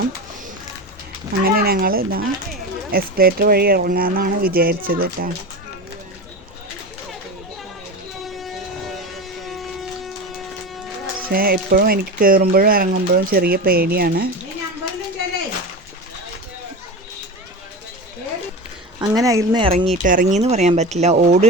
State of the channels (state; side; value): normal; both; correlation 0.25